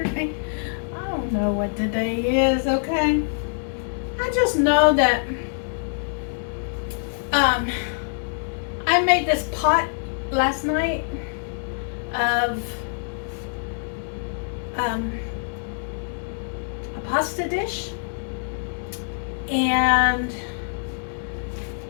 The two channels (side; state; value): right; silent; 62 dB below the other